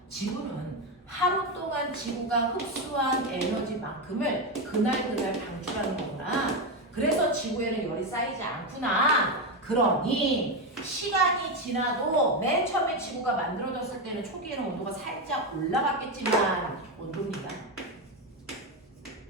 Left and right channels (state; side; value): normal; both; correlation 0.11